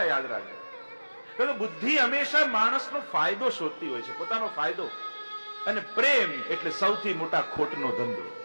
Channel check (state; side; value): inverted; both; correlation -1.00